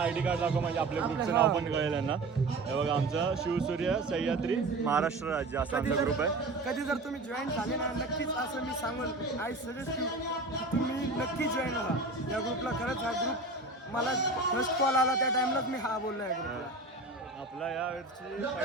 ID कार्ड दाखव म्हणजे आपल्या ग्रुपचं नाव पण कळेल यांना. हे बघा आमचा शिवसूर्य सह्याद्री महाराष्ट्र राज्य असा आमचा ग्रुप आहे. कधी जर तुम्ही जॉईन झाले ना नक्कीच असं मी सांगून आय सजेस्ट की तुम्ही नक्की जॉईन व्हा या ग्रुपला. खरंच हा ग्रुप मला फर्स्ट कॉल आला त्या टाइमलाच मी हा बोललो या ग्रुपला. आपला या वर्षी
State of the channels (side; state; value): left; quieter; 3.1 dB